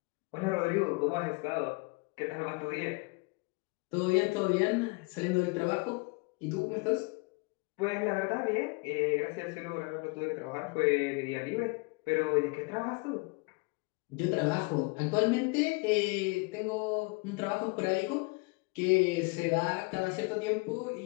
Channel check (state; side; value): quieter; right; 28.9 dB